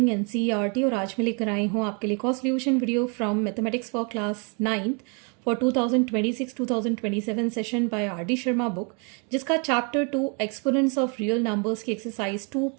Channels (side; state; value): left; quieter; 36.0 dB